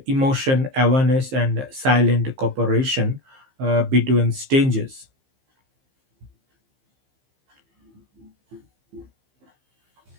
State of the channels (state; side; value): late; left; 15 ms